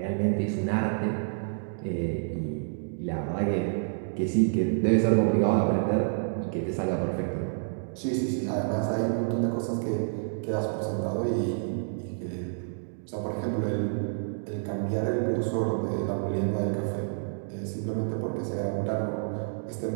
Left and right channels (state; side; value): silent; left; digital silence